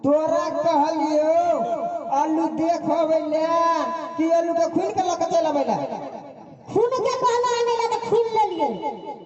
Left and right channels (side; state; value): both; identical; correlation 1.00